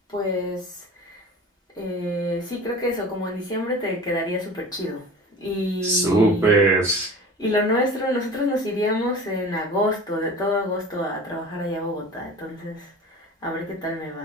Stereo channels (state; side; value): normal; both; correlation 0.38